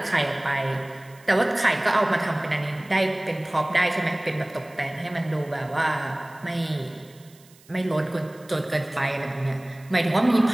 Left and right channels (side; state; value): right; noise; hiss, 27 dB below the sound